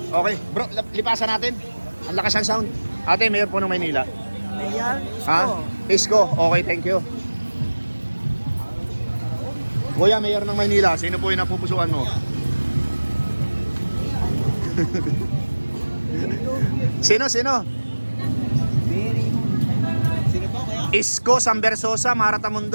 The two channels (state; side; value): inverted; both; correlation -1.00